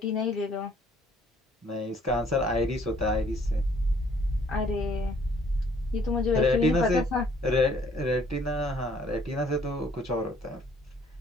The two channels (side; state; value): both; normal; correlation 0.61